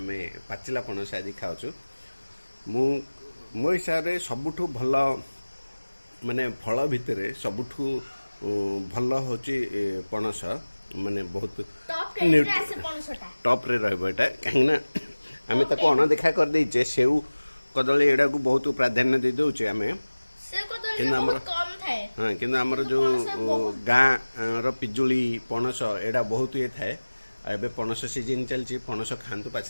पाचिला पणस आज खाऊँ मो हिसाब से सबुठु भल माने फल भितर सबुठु भल हूँ पणस माने बहुत टॉप रे रहा कहीं आम ताको अणदेखा कर देचे सेऊ कदली एडा को बहुत प्राधान्य दे दौचे आम हाँ कि आमर जो गाँ रिजुली पणस एडा बहुत ये थाए एबे पणस सीजन चलती पणस खातु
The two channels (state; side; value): inverted; both; correlation -1.00